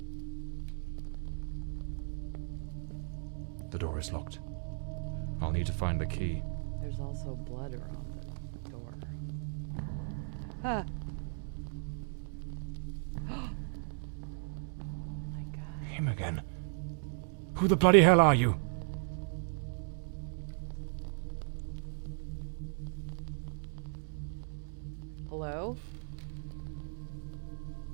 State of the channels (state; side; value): silent; left; digital silence